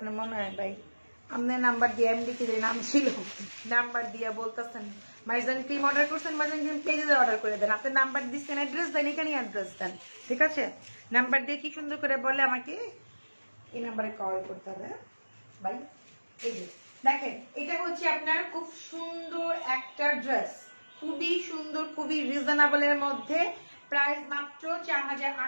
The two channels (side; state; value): both; inverted; correlation -1.00